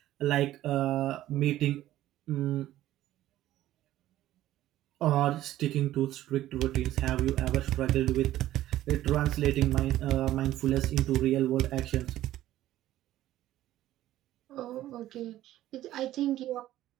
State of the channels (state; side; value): quieter; left; 14.0 dB